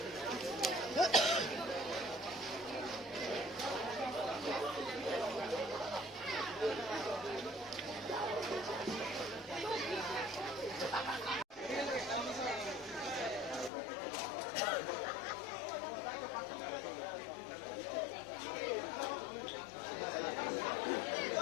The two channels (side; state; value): right; drops out; at 13.7 s